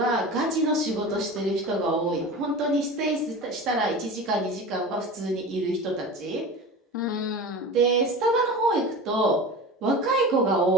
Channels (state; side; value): normal; both; correlation 0.33